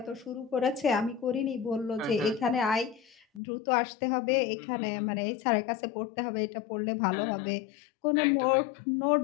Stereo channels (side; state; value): right; drops out; at 3.4 s